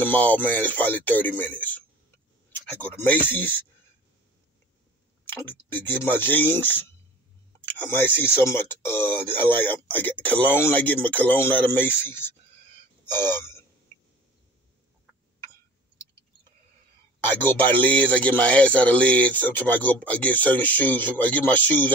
mall, man, is probably 30 minutes. I go to Macy's to get my jeans. I might see some. I get cologne. I get my cologne out of Macy's. I go by Lids. I get my ass out of Lids. Sometimes I get certain shoes. I get my shoes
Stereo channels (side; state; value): both; normal; correlation 0.44